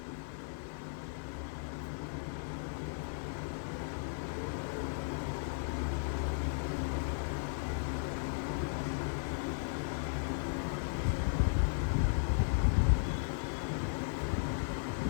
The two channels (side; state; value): right; silent; digital silence